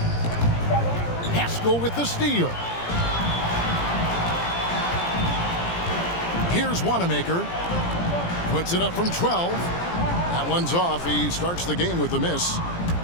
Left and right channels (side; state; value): right; late; 17 ms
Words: Paschall with the steal. Here's Wanamaker. Puts it up from 12. That one's off. He starts the game with a miss.